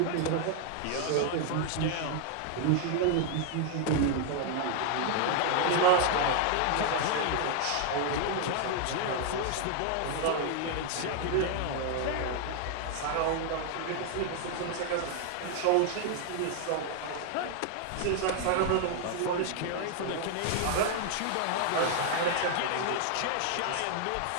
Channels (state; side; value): different; both; correlation 0.00